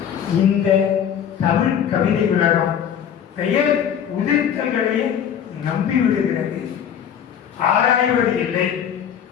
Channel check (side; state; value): right; quieter; 8.8 dB